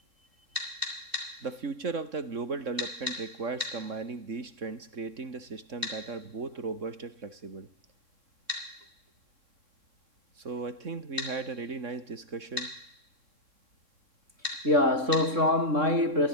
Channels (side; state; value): left; late; 3.6 ms